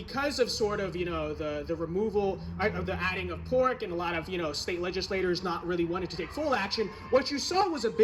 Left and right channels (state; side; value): identical; both; correlation 1.00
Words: of sort of, the removal of the adding of pork and a lot of, state legislators not really wanting to take full action, what you saw was a